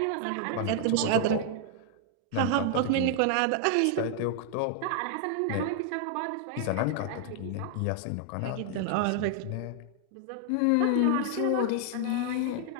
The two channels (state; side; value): different; both; correlation 0.00